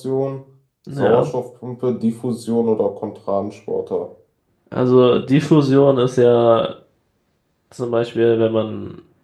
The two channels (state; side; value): identical; both; correlation 1.00